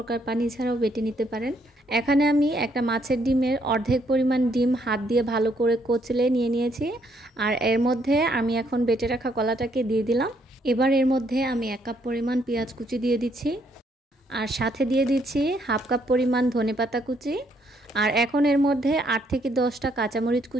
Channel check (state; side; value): normal; both; correlation 0.71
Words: পানি ছাড়াও বেটে নিতে পারেন। এখানে আমি একটা মাছের ডিমের অর্ধেক পরিমাণ ডিম হাত দিয়ে ভালো করে কচলে নিয়ে নিয়েছি। আর এর মধ্যে আমি এখন বেটে রাখা কলাটাকে দিয়ে দিলাম। এবার এর মধ্যে আমি 1 কাপ পরিমাণ পেঁয়াজ কুচি দিয়ে দিচ্ছি। আর সাথে দিয়ে দিচ্ছি হাফ কাপ পরিমাণ ধনেপাতা কুচি। আর এখন এর মধ্যে 8 থেকে 10টা কাঁচামরিচ